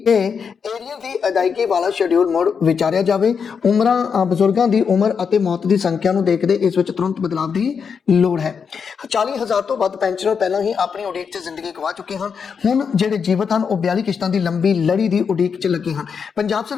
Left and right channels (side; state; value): right; quieter; 6.3 dB